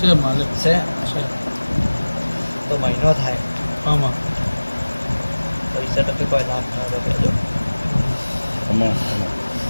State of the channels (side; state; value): both; inverted; correlation -1.00